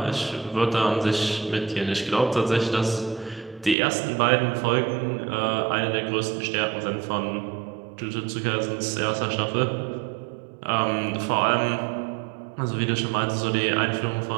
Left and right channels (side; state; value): left; drops out; at 3.8 s